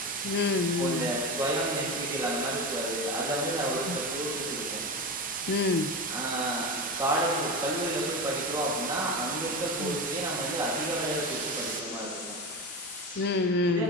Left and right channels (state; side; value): normal; both; correlation 0.22